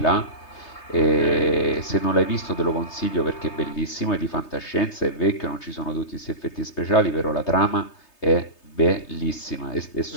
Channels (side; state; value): right; late; 3.3 ms